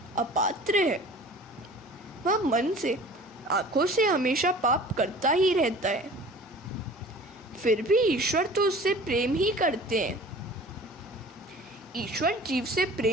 अपात्र है। वह मन से, आँखों से हमेशा पाप करता ही रहता है, फिर भी ईश्वर तो उससे प्रेम ही करते हैं। ईश्वर जीव से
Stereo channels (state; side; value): normal; both; correlation 0.44